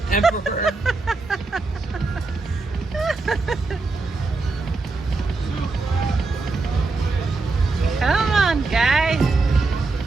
Emperor. Come on, guy.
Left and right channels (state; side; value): quieter; left; 3.7 dB